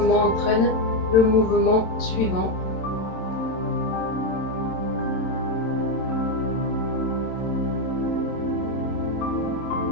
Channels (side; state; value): right; late; 27 ms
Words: entraîne le mouvement suivant.